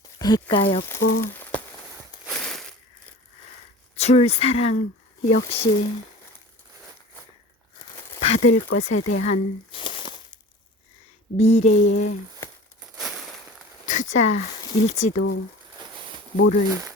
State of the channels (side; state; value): both; normal; correlation 0.40